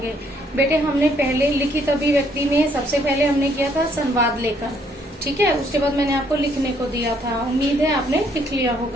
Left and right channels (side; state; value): both; normal; correlation 0.67